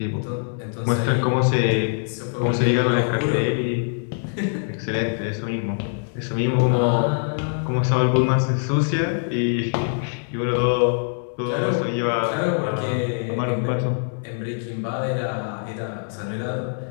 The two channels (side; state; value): right; silent; digital silence